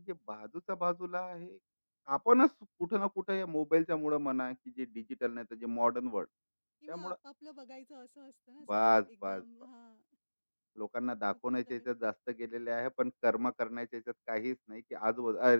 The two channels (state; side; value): inverted; both; correlation -1.00